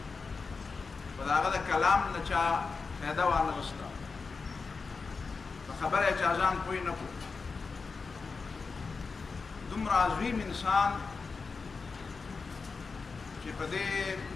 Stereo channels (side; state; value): right; quieter; 4.6 dB